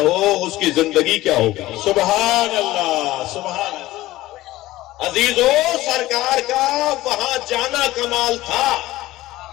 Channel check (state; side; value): quieter; right; 16.9 dB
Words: اس کی زندگی کیا ہوگی؟ سبحان اللہ، سبحان اللہ۔ عزیزو، سرکار کا وہاں جانا کمال تھا،